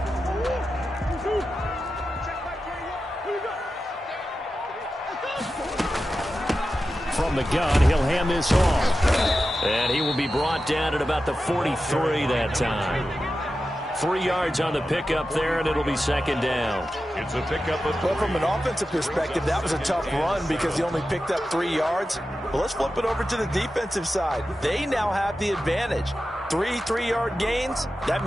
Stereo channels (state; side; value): normal; both; correlation 0.92